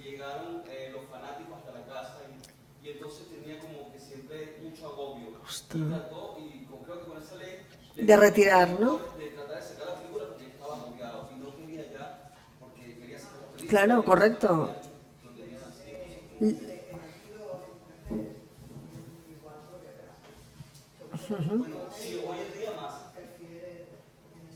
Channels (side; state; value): both; identical; correlation 1.00